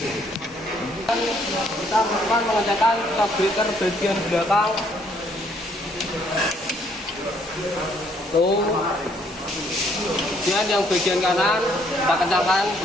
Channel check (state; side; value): normal; both; correlation 0.67